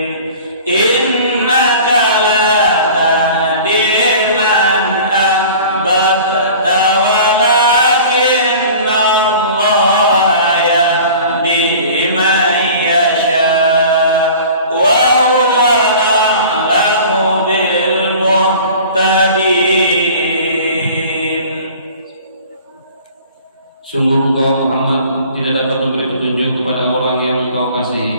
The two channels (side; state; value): both; inverted; correlation -0.43